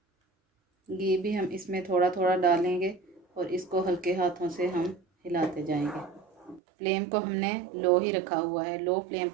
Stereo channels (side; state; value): left; drops out; at 6.6 s